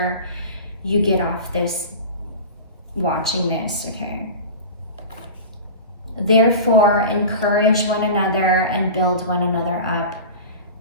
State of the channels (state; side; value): inverted; both; correlation -0.32